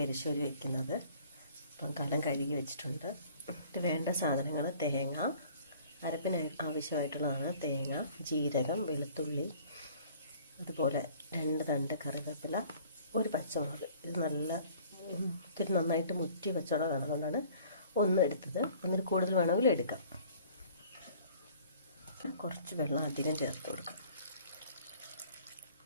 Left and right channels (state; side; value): inverted; both; correlation -0.52